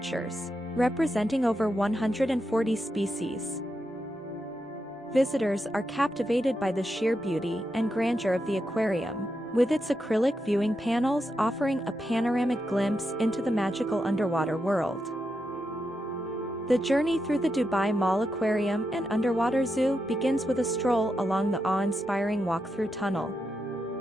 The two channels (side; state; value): both; normal; correlation 0.85